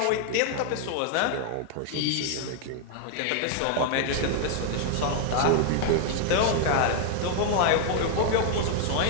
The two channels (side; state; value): both; different; correlation 0.00